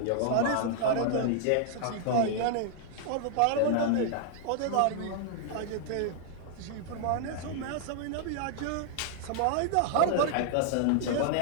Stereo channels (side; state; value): both; different; correlation -0.01